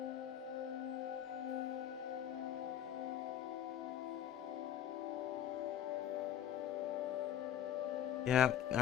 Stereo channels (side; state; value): right; quieter; 10.4 dB